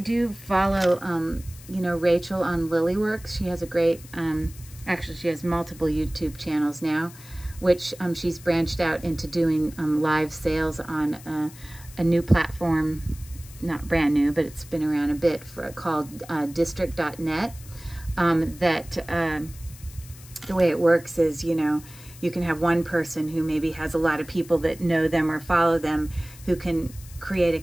do follow, you know, Rachel on Lilyworks. She has a great, actually she has multiple YouTube channels now, which she's branched out into doing live sales on a new platform, not brand new, but it's been around a bit, called district.net. The way it works is, you know, you can have one person who maybe has a lot of people that know them or follow them who can create a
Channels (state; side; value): noise; left; hiss, 20 dB below the sound